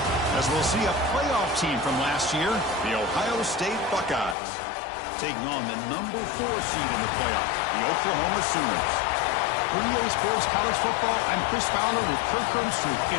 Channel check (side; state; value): right; drops out; at 4.4 s